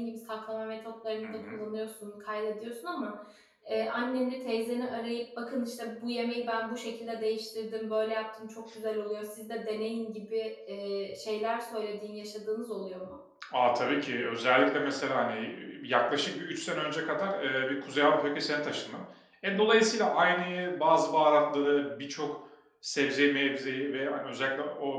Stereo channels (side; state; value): both; identical; correlation 1.00